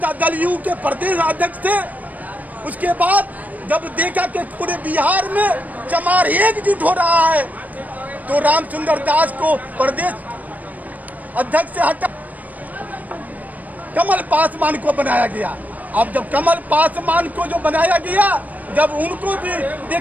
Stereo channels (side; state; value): left; late; 0.077 ms